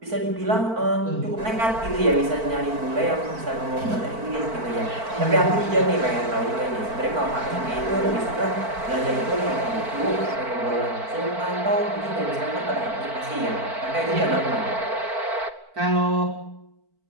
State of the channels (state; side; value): late; left; 4.5 ms